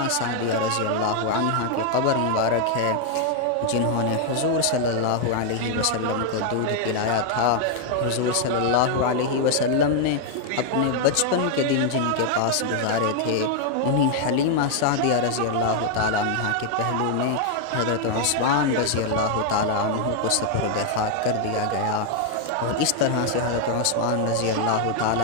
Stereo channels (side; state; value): both; different; correlation 0.00